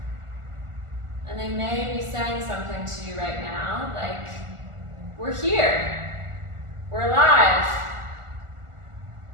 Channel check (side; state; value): left; late; 1.4 ms